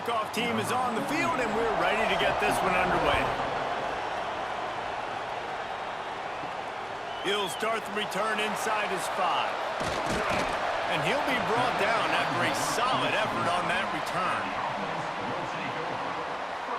team is on the field, and we're ready to get this one underway. He'll start the return inside his 5. And he'll be brought down after a solid effort on that return.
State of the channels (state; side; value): identical; both; correlation 1.00